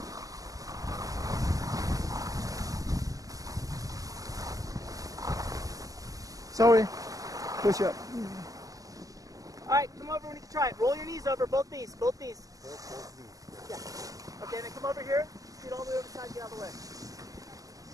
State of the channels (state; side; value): late; left; 0.17 ms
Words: Sorry. Push up. All right, come over when you can try it. Roll your knees over, both knees, both knees. Yeah. Okay, then come over here. Scoot all the way over the side, get out of the way.